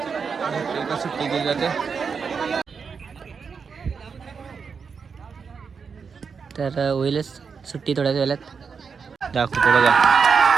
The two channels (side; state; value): left; quieter; 5.8 dB